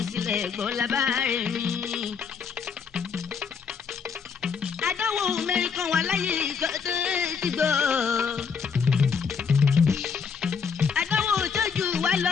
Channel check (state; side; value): quieter; right; 6.1 dB